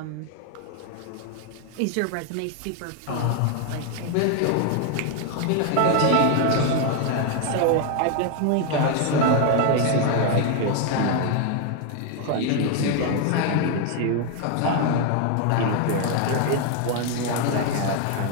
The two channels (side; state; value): both; different; correlation 0.01